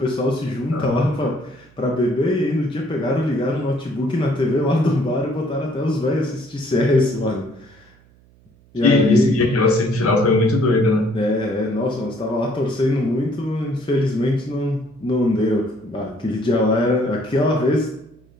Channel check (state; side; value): noise; right; hum, 29 dB below the sound